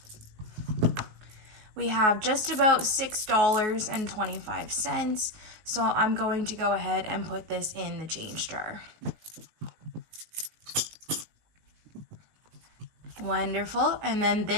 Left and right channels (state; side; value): late; left; 19 ms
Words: We have just about $6.25, so I'm going to go ahead and put this in the change jar. Wonderful. And then